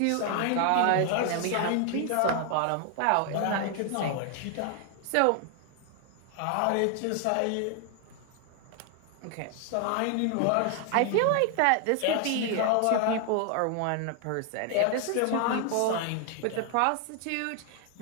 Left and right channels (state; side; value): different; both; correlation 0.00